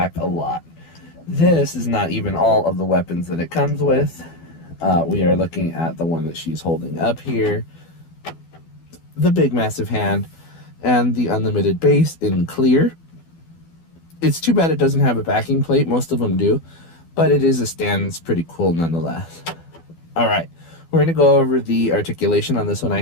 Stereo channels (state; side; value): late; right; 12 ms